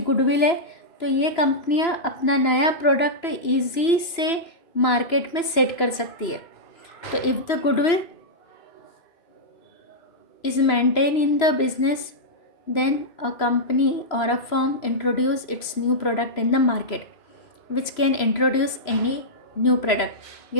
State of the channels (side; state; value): right; late; 3.0 ms